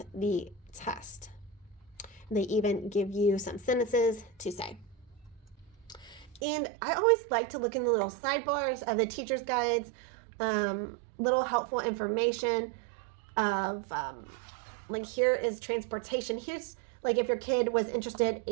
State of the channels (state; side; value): drops out; left; at 6.4 s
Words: the test. They even give you some sentences to say. And I always like to look in the little sidebars of the teacher's guides little helpful information of like here is transportation. Here's like if your kid was interested